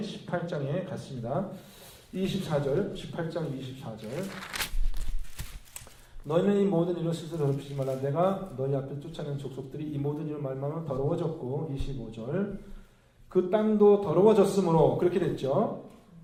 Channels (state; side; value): identical; both; correlation 1.00